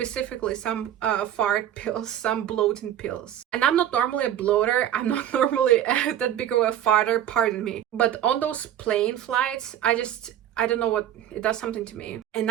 some fart pills, some bloating pills. And I'm not normally a bloater, I'm not normally that big of a farter, pardon me. But on those plane flights, I don't know what, it does something to me. And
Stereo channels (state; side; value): quieter; left; 11.0 dB